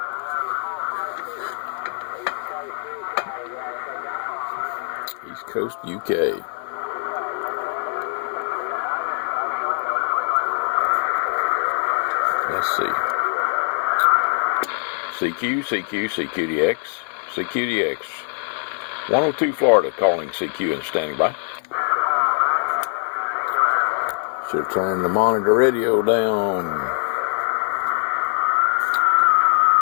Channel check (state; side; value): silent; right; 64 dB below the other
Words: East Coast, UK. Let's see. CQDX. 102 Florida, calling CQ and standing by. Should have turned the monitor radio down.